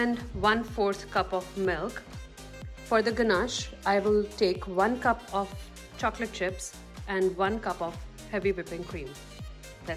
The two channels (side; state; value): both; identical; correlation 1.00